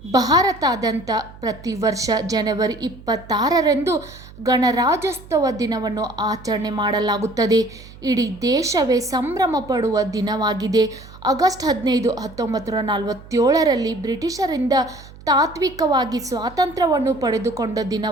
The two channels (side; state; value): right; noise; hum, 19 dB below the sound